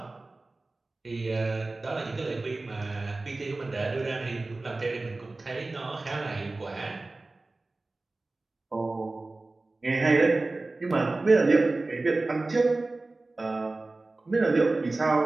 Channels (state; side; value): quieter; left; 3.2 dB